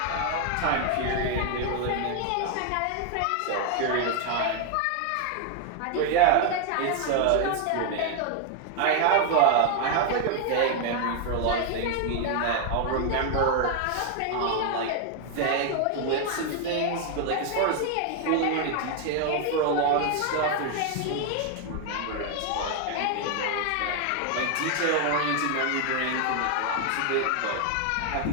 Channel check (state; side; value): different; both; correlation 0.00